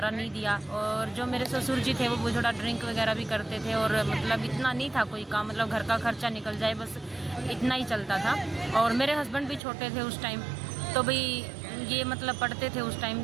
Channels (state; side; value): drops out; left; at 9.6 s